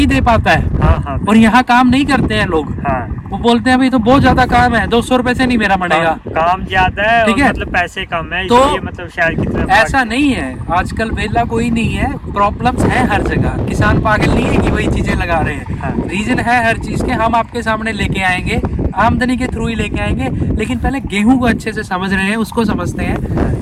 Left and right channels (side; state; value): both; identical; correlation 1.00